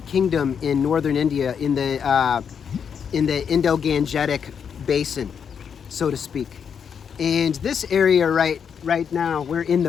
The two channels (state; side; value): quieter; right; 7.2 dB